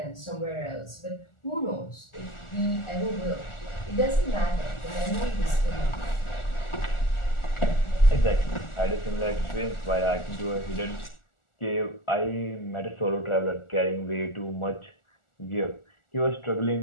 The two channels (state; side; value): late; right; 1.4 ms